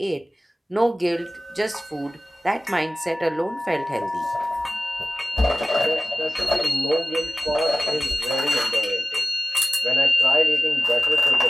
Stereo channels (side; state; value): both; normal; correlation 0.97